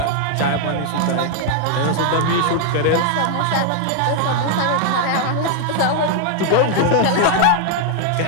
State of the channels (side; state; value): both; different; correlation 0.00